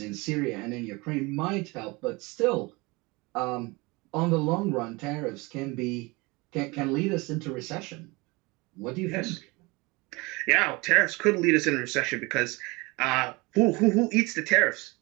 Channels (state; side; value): quieter; left; 24.9 dB